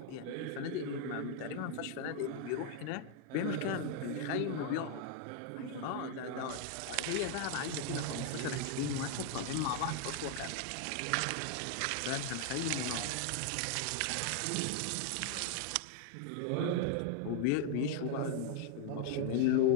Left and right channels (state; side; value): different; both; correlation 0.00